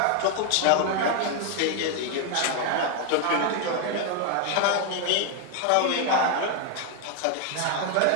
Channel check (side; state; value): both; different; correlation 0.01